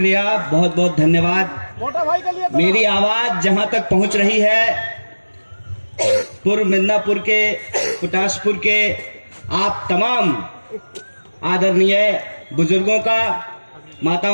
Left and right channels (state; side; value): inverted; both; correlation -1.00